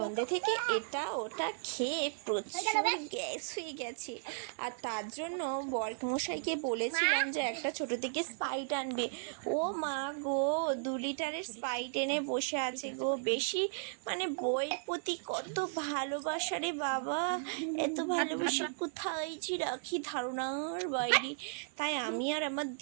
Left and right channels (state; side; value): silent; left; digital silence